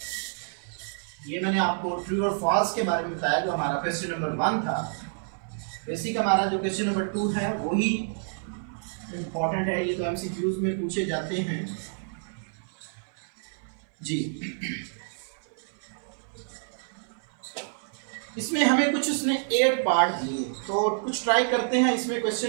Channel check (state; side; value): silent; left; 59 dB below the other